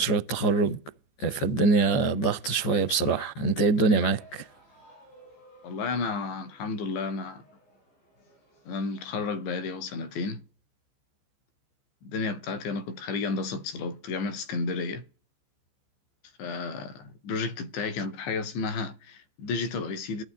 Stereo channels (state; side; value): late; right; 14 ms